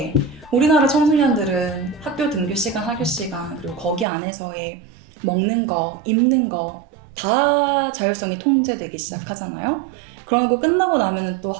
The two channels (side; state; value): left; drops out; at 4.0 s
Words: 우리나라 청소년들은 학교 등교 시간, 학교 시간, 그리고 거기 안에서의 먹는 거, 입는 거 다 자율성이 통제되기 시작하잖아요. 그런 거 끝나고 나면 또